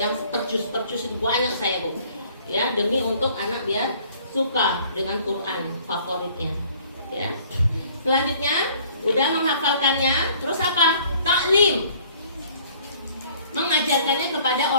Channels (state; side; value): inverted; both; correlation -0.56